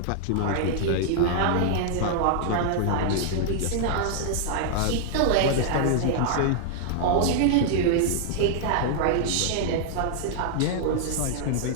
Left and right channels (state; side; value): different; both; correlation -0.01